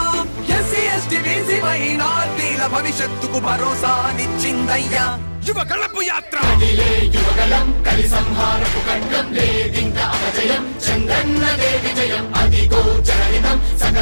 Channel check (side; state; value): both; inverted; correlation -1.00